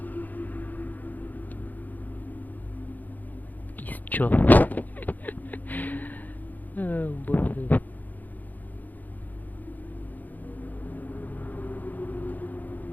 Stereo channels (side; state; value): right; late; 0.083 ms